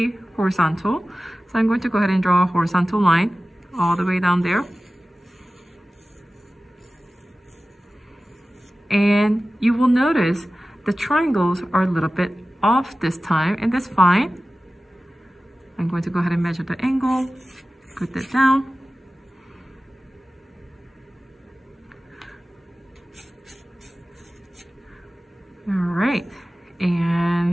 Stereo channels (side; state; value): both; normal; correlation 0.96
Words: horizontal. So I'm going to go ahead and draw a horizontal line all the way down there. And you will notice the triangles are a little bit off this time, and that's fine. I'm going to go ahead and measure the angle, put that down. All right,